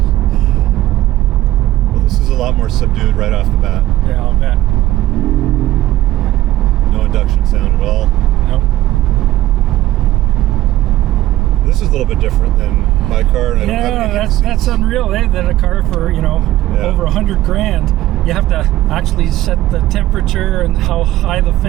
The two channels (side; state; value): left; quieter; 15.4 dB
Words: Well, this is a lot more subdued right off the bat. Yeah, I'll bet. No induction sound at all. Nope. This is a little bit different than my car. And I don't have any heated that's seats. unreal, eh? That a car for, over 100 grand, you have to actually set the temperature and how high the